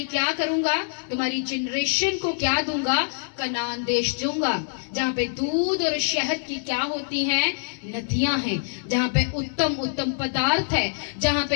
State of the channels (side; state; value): right; silent; 62 dB below the other